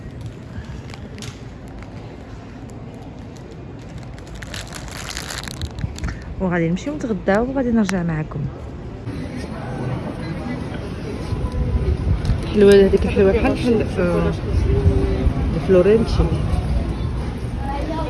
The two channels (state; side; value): identical; both; correlation 1.00